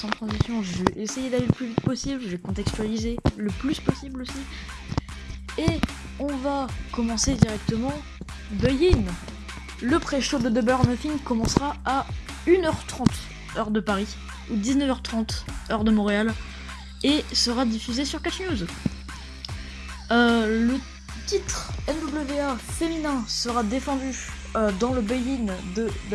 Je vais essayer d'aller le plus vite possible. Je vais contextualiser le plus possible aussi. Et on va commencer directement. Buy-in. Le pré-show de Double or Nothing commencera à 1h30 heure de Paris ou 19h30 heure de Montréal et sera diffusé sur Catch News. Le titre NWA féminin sera défendu dans le buy-in de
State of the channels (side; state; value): both; identical; correlation 1.00